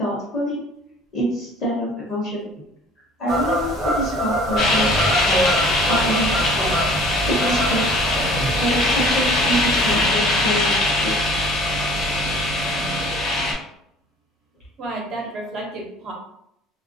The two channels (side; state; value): both; normal; correlation 0.50